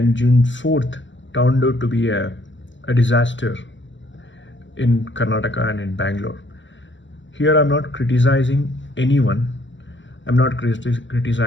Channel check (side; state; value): right; late; 0.54 ms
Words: June 4th turned out to be a disaster in Karnataka and in Bangalore. Here I'm not criticizing anyone. I'm not